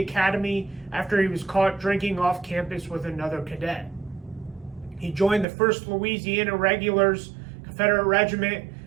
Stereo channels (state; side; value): drops out; left; at 5.5 s